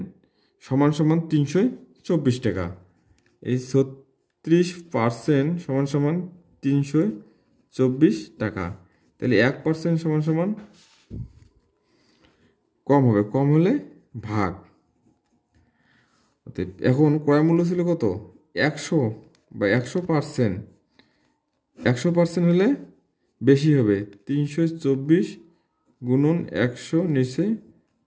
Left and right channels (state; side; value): identical; both; correlation 1.00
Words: সমান সমান 324 টাকা। এই 36% সমান সমান 324 টাকা। তাহলে 1% সমান সমান কম হবে, কম হলে ভাগ। এখন ক্রয় মূল্য ছিল কত? 100 বা 100%। 100% হলে বেশি হবে, 324 গুণন 100 নিচে